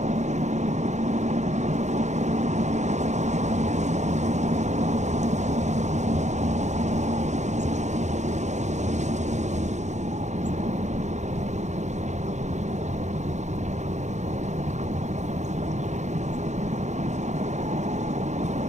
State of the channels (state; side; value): late; left; 0.34 ms